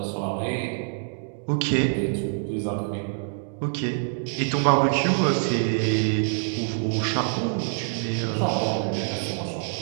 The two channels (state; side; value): silent; left; digital silence